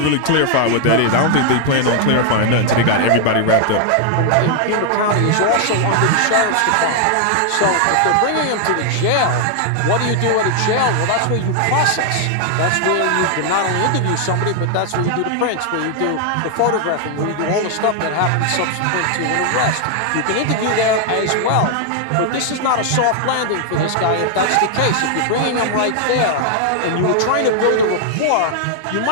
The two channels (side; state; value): both; different; correlation 0.00